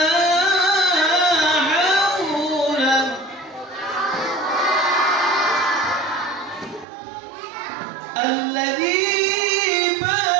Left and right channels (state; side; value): drops out; left; at 6.9 s